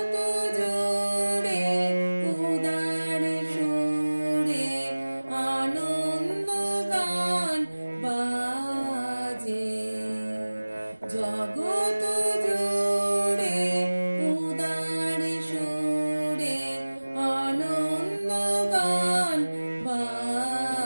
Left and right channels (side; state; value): both; inverted; correlation -1.00